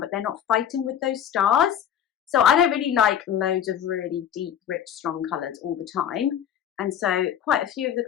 but they're not fighting with those stars. So I don't really like loads of really deep, rich, strong colours all the time. And so quite a few of the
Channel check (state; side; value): quieter; right; 9.4 dB